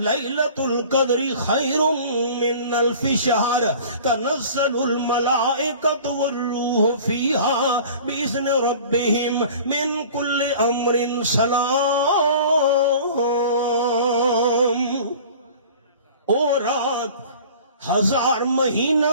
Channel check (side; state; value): both; inverted; correlation -0.44